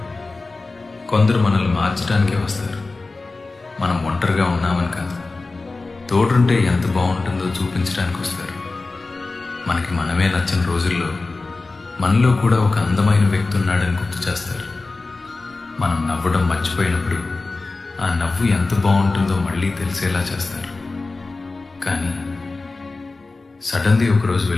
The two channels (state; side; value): quieter; right; 3.6 dB